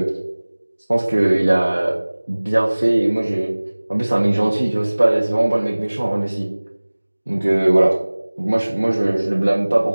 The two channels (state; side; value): inverted; both; correlation -1.00